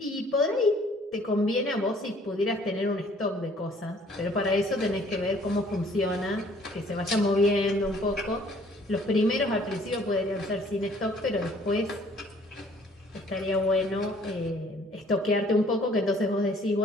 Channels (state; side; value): normal; both; correlation 0.58